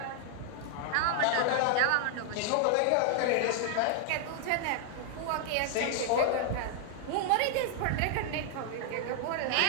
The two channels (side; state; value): both; different; correlation 0.00